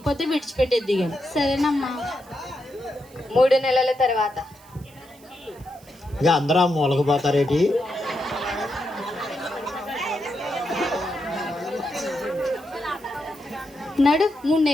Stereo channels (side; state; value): right; noise; hiss, 26 dB below the sound